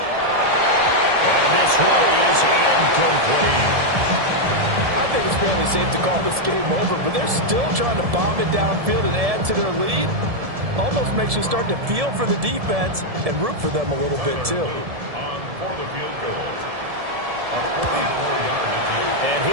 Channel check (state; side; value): late; left; 1.7 ms